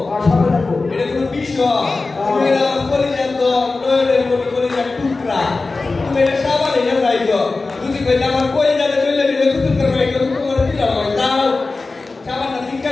আর সবাই রাখবো এটা কোনো বিষয় তুমি এটা করে যাতো নয়নের মনে করে যা টুকরা তুমি এটা সাবানে না যাইছো যদি কই আমার কই যাবে চলে দিলে কুতুল করবে এটা তোমার দিলাম দাও সাবানটা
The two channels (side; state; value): right; quieter; 3.7 dB